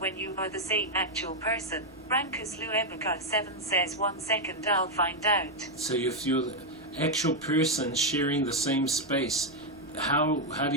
you are the same actual person. Brankus Luebica 7 says 1 second, I'll find out. So if you're the actual person sharing the same space, how do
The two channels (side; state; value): right; noise; hum, 29 dB below the sound